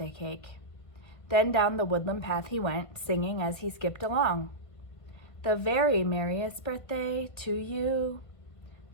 cake. Then down the woodland path he went, singing as he skipped along. The very merriest birthday to you.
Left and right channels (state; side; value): late; right; 1.5 ms